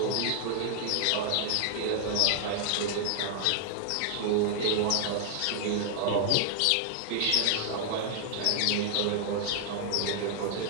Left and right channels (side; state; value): both; different; correlation 0.00